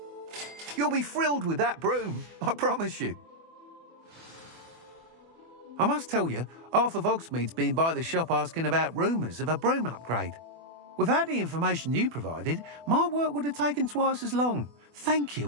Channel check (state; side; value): late; left; 24 ms